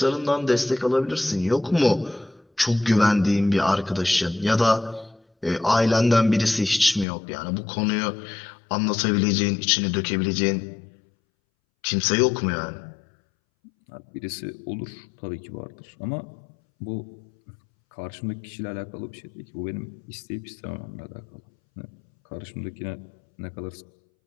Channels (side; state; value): right; drops out; at 7.1 s